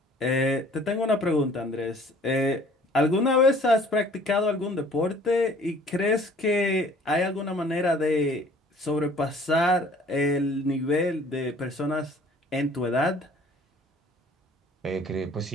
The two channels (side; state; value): both; normal; correlation 0.53